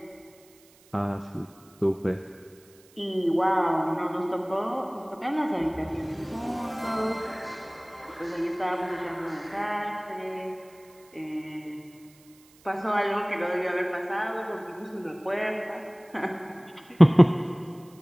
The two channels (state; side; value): noise; right; hiss, 28 dB below the sound